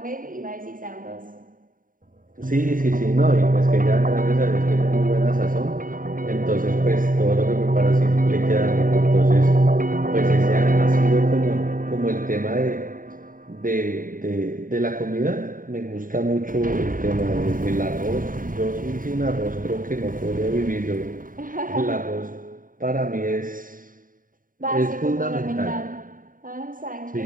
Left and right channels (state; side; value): late; left; 0.40 ms